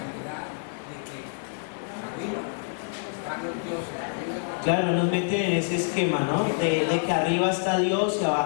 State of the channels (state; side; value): silent; right; digital silence